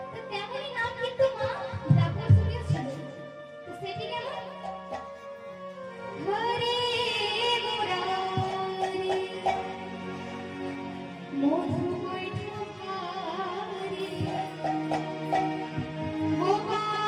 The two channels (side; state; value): both; identical; correlation 1.00